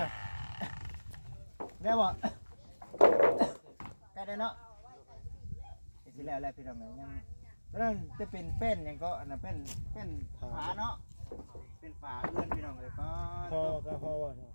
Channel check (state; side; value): inverted; both; correlation -1.00